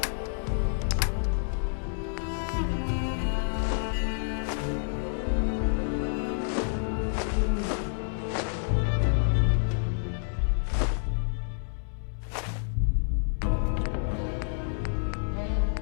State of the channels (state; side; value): silent; right; digital silence